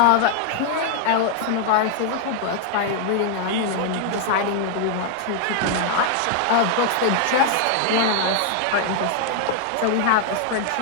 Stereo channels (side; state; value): both; different; correlation 0.00